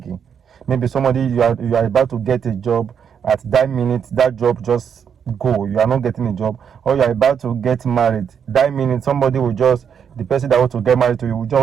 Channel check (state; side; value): quieter; left; 7.6 dB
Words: Maybe you are about to get a job, at that minute that job just go, you are not getting a job. Or you are about to get married, that minute the person that wants to get married to you will